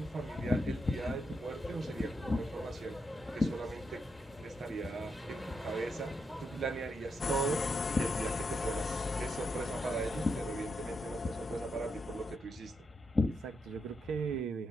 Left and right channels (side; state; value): both; normal; correlation 0.83